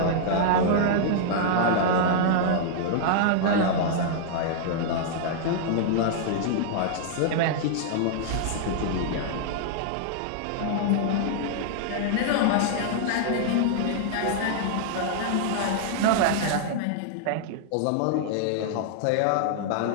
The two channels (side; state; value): both; different; correlation -0.01